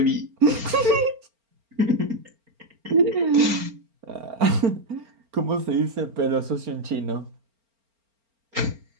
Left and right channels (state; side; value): late; left; 4.4 ms